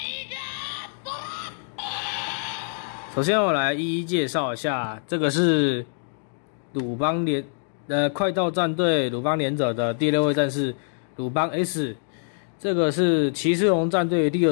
首先我来一一介绍一下，这个是快到战队鲁邦连者的第6位战士鲁邦 S。这个是骑士龙战队第2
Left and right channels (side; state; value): right; silent; digital silence